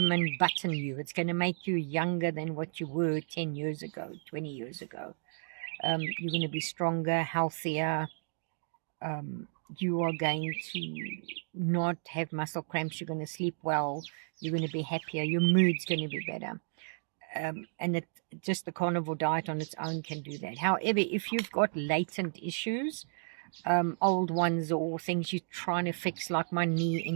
Button you. It's going to make you younger than what you were 10 years ago, 20 years ago. You're going to be stronger, healthier. You are going to not have muscle cramps. You're going to sleep well. You're going to be happier. Your mood's going to be better. And just the carnivore diet on its own can do that. However, if you've got latent issues, old ones or things you're trying to fix, like my knee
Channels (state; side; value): silent; left; digital silence